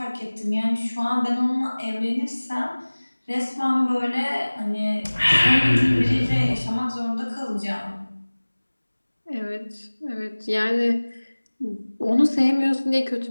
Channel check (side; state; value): both; inverted; correlation -1.00